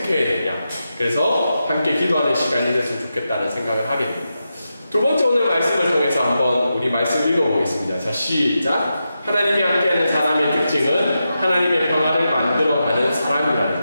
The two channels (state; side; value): inverted; both; correlation -0.88